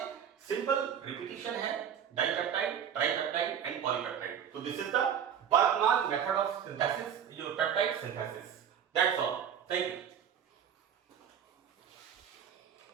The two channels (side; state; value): left; quieter; 8.6 dB